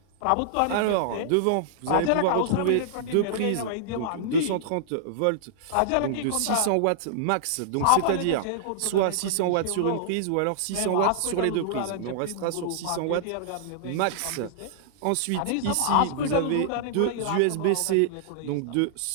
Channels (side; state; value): both; different; correlation -0.02